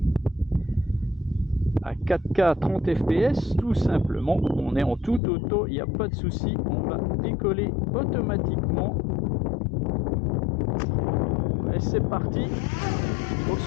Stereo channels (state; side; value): drops out; right; at 5.2 s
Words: à 4K 30 fps tout simplement, on est en tout auto, il n'y a pas de souci, on va décoller automatiquement. Et c'est parti. Donc